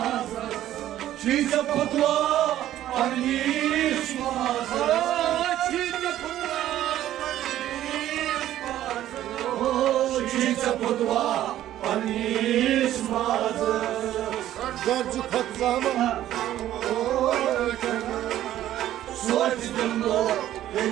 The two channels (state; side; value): quieter; left; 12.8 dB